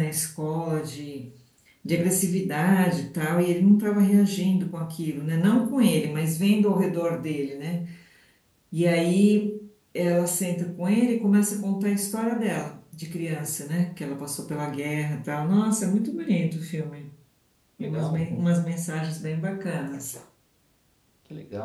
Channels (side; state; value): both; identical; correlation 1.00